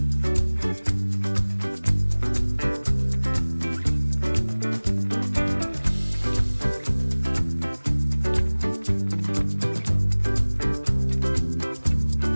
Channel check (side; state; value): both; inverted; correlation -1.00